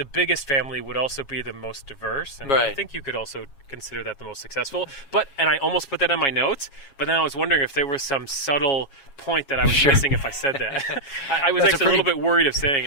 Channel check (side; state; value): right; late; 7.3 ms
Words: biggest family would also be the most diverse, and I Right. think you could also consider that the most successful. And I almost put that in my notes, but then I was wondering if there was some subtle point that I was missing if I said that. I was That's actually a little bit worried of saying